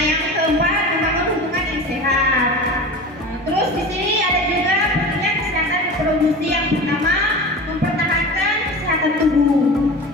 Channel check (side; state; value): both; normal; correlation 0.33